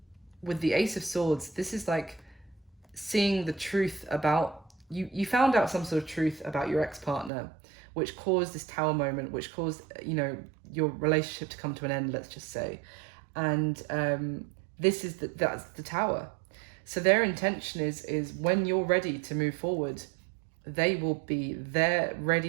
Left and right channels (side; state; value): left; drops out; at 7.3 s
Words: with the Ace of Swords, this is like seeing the truth about you found out some sort of truth about your ex-partner, which caused this Tower moment, which caused, you know, your relationship to come to an end, let's just say. And this is that's the Tower. So their intention is when you're ready to move forward, they will be there,